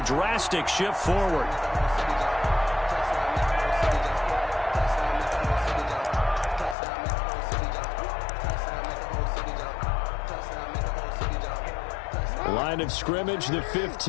drastic shift forward. Line of scrimmage, the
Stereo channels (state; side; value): drops out; right; at 6.8 s